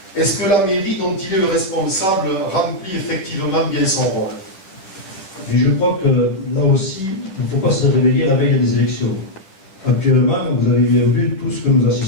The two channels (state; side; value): late; right; 10 ms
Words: est-ce que la mairie dont il est le responsable remplit effectivement bien son rôle? Et je crois que là aussi, il ne faut pas se réveiller la veille des élections. Actuellement, vous avez bien vu tout ce que nous